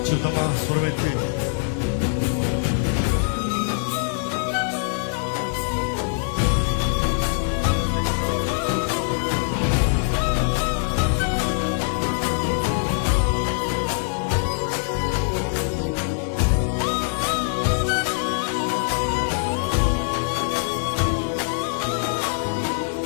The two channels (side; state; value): right; silent; digital silence